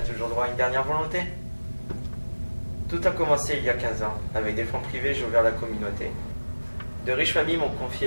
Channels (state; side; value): inverted; both; correlation -1.00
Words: toujours droit à une dernière volonté. Tout a commencé il y a 15 ans. Avec des fonds privés, j'ai ouvert la communauté. De riches familles m'ont